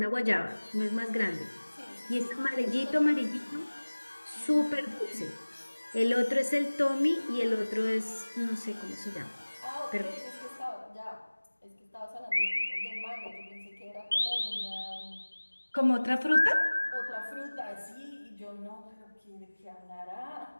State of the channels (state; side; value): inverted; both; correlation -1.00